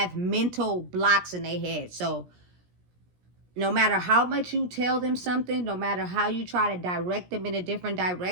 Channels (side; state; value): left; late; 17 ms